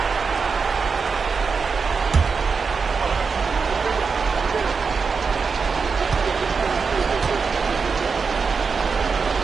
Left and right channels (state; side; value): quieter; left; 5.2 dB